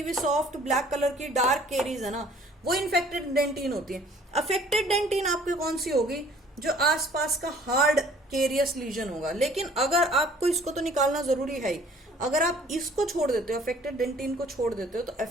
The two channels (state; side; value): normal; both; correlation 0.55